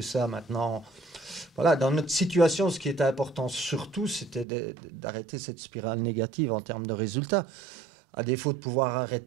ça maintenant. Voilà, dans notre situation, ce qui était important surtout, c'était d'arrêter cette spirale négative en termes de résultats. À défaut de pouvoir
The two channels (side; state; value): left; drops out; at 4.5 s